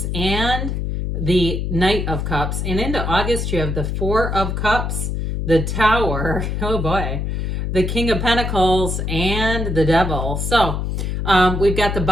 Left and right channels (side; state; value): left; noise; hum, 2 dB below the sound